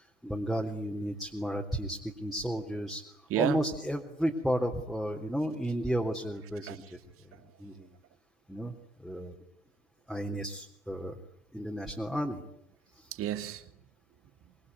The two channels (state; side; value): normal; both; correlation 0.74